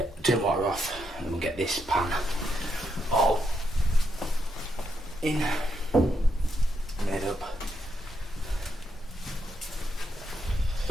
Turn water off and then we'll get this pan all in, made up.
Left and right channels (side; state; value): both; normal; correlation 0.80